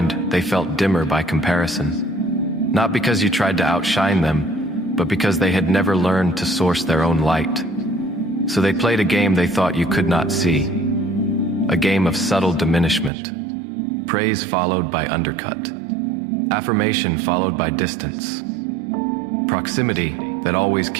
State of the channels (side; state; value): left; drops out; at 13.1 s